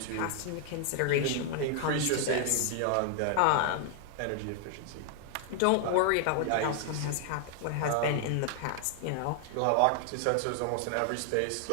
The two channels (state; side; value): different; both; correlation 0.00